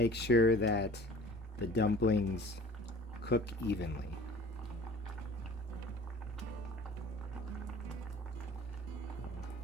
sure that the dumplings cook evenly.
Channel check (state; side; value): normal; both; correlation 0.46